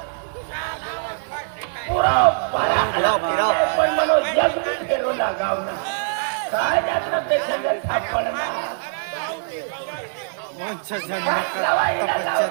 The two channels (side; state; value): left; silent; digital silence